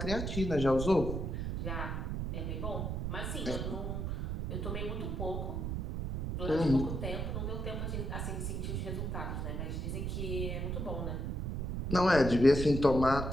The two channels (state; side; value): noise; right; rumble, 2 dB below the sound